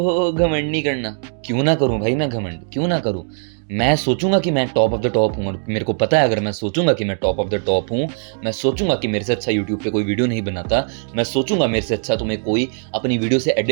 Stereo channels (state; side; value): silent; left; 63 dB below the other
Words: घमंड नहीं करना। क्यों ना करूं भाई मैं घमंड, क्यों ना करूं? मैं सोचूंगा कि मैं टॉप ऑफ द टॉप हूं, और मेरे को पता है अगर मैं सोचूंगा कि मैं टॉप ऑफ द टॉप हूं, मैं सोचूंगा कि मेरे से अच्छा यूट्यूब पे कोई वीडियो नहीं बनाता, मैं सोचूंगा मेरे से अच्छा तुम्हें कोई अपनी वीडियो से